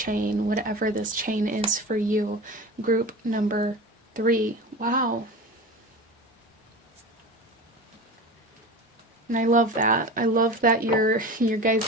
whatever this chain is for you. Group number 3. Wow. And I love that. I love that your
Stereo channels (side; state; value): both; normal; correlation 0.31